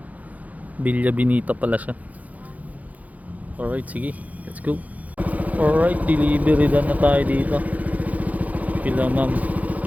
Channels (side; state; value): left; late; 0.075 ms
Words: Villa Benita pala siya. Alright, sige. Let's go. Alright, delivery done na tayo dito. Pila ma'am